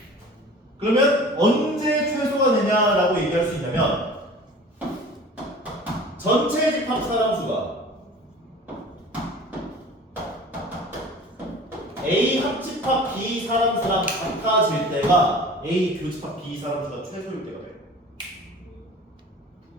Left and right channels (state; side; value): normal; both; correlation 0.42